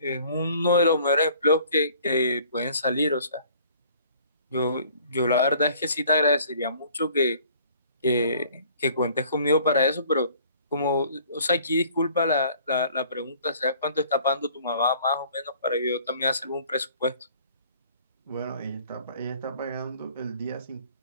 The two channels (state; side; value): inverted; both; correlation -0.54